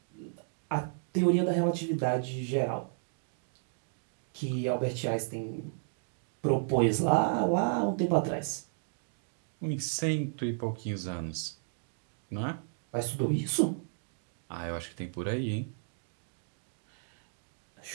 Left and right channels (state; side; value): silent; left; digital silence